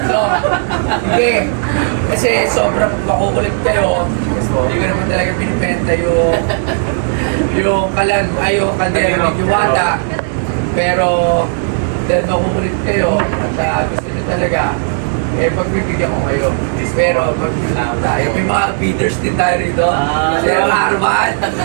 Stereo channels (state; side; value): silent; left; 70 dB below the other